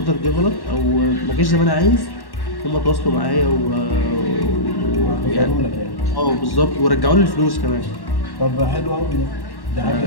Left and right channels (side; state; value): right; late; 1.1 ms